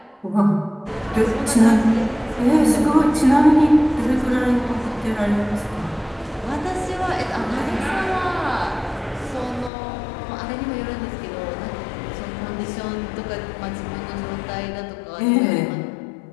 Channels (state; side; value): drops out; right; at 9.7 s